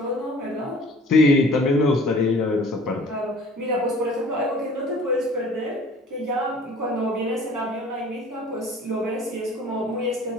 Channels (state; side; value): normal; both; correlation 0.49